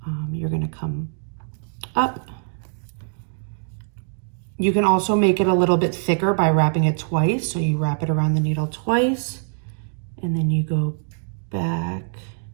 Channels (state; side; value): silent; left; digital silence